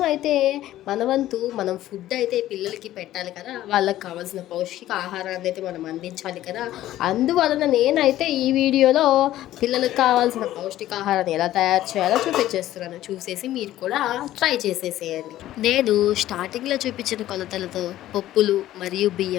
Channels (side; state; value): right; quieter; 14.0 dB